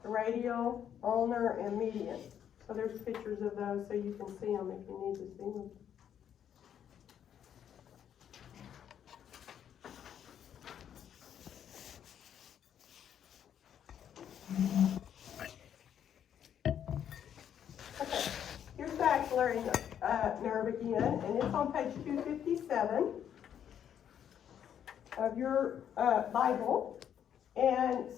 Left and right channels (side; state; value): right; quieter; 9.3 dB